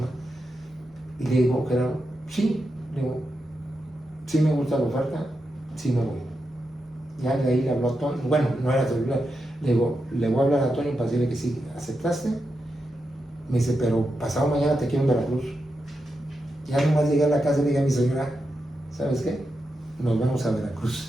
Y le digo, Gerardo, sí, sí me gusta la oferta, sí me voy. Ya de ahí le habló a Toño, bueno, no era celular, le digo, le voy a hablar a Toño para decirle que sí, ¿aceptaste? Me dice, pero pasado mañana te quiero en Veracruz. Ya nomás llegué a la casa y le dije a mi señora, ¿sabes qué? Nos vamos a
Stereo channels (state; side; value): normal; both; correlation 0.87